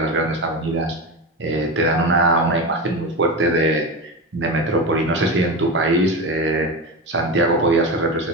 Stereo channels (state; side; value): normal; both; correlation 0.21